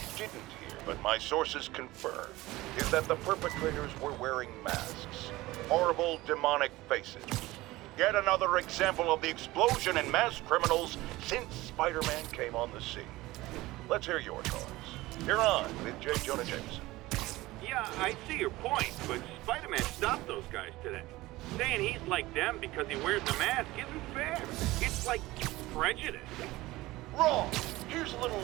didn't hear, but my sources confirm, is that the perpetrators were wearing masks. Horrible, demonic faces. Yet another example of the explosion in mass criminals since Spider-Man came on the scene. Let's hear your thoughts. You're on with J. Jonah Jameson. Yeah, I see your point, but Spider-Man stopped those guys today. Saying he's like them because he wears a mask isn't fair. It's like prejudice. Wrong. Here's a little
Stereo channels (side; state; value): left; quieter; 18.8 dB